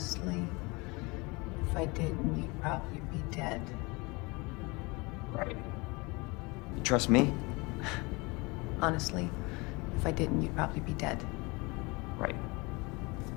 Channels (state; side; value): quieter; right; 26.2 dB